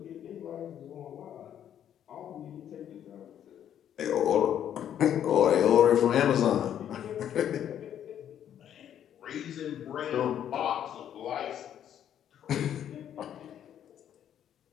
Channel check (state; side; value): quieter; right; 10.0 dB